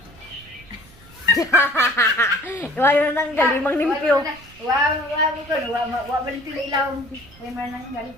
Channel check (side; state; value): right; noise; rumble, 24 dB below the sound